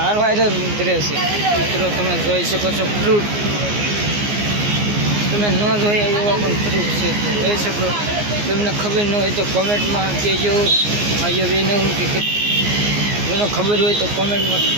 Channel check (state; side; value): late; left; 14 ms